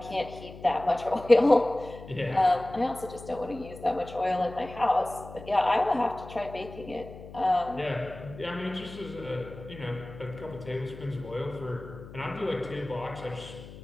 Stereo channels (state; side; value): noise; left; hum, 15 dB below the sound